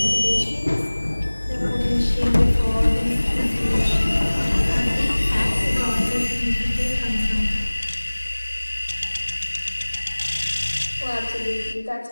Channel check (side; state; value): both; inverted; correlation -1.00